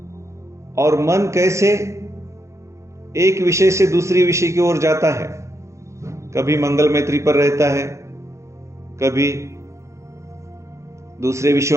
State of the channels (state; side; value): late; left; 0.14 ms